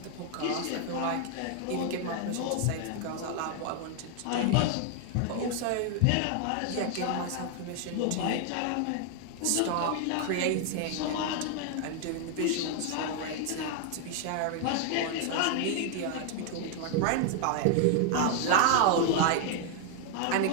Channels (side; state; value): both; different; correlation 0.00